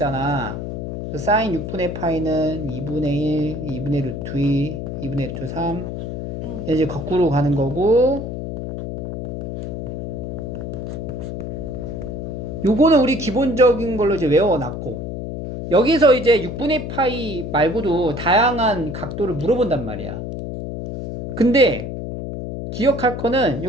사인 6분의 파이는 2분의 1, 2분의 루트 2, 2분의 루트 3. 이제 거꾸로 가는 거고, 요거는 우리 기본적인 걸로 이제 외워놨고, 여기서 이제 6분의 파이 말고도 다양한 각도를 물어본단 말이야. 근데 기억할 거는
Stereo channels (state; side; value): noise; left; hum, 6 dB below the sound